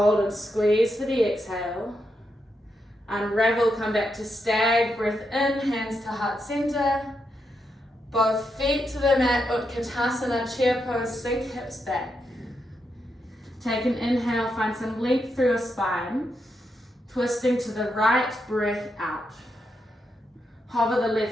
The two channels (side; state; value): both; normal; correlation 0.83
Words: and squeeze for the exhale. Unravel, come back to stag, breath in, hands to heart center. Both feet to the mat, Utkatasana, chair pose, sink hips back. Take an inhale, find some length through your spine. Twisting to the right, breath out. Hover the